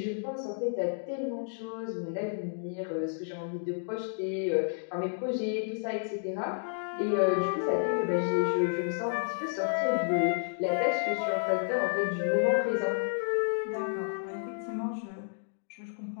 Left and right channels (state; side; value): silent; right; digital silence